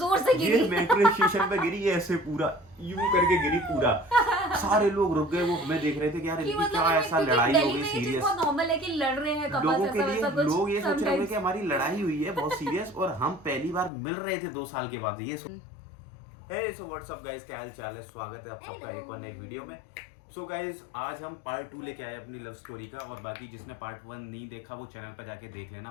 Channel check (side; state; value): right; drops out; at 13.9 s